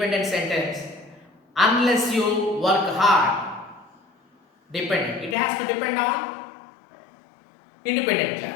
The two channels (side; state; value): right; drops out; at 5.4 s